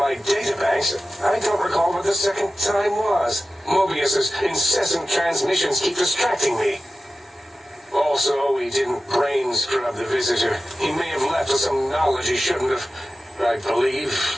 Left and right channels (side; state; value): both; normal; correlation 0.95